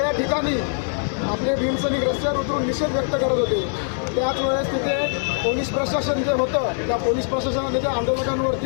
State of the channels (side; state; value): right; silent; 64 dB below the other